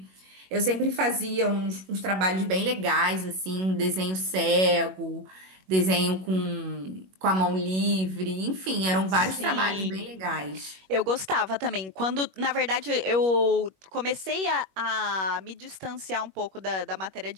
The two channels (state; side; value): late; left; 21 ms